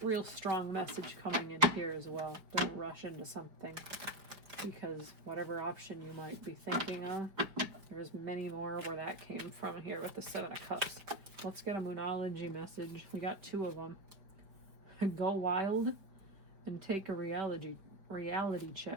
real strong message coming in here as well. Don't rush into something, because whatever option you might be thinking of, there's many more where that came from here with the Seven of Cups. Let's get a Moonology message. We got two of them. Go wild and take a reality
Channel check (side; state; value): left; late; 4.7 ms